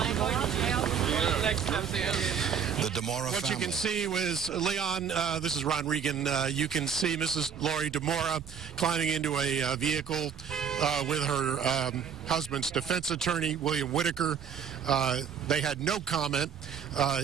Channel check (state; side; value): quieter; left; 7.3 dB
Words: The Dimora What family. you can see was, Leon, this is Ron Regan, you can see Mrs. Lori Dimora climbing into a vehicle with her husband's defense attorney, William Whitaker. They had no comment.